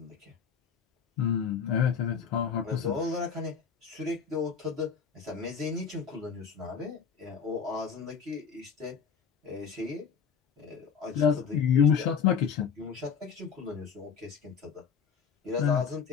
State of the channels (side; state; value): right; quieter; 6.6 dB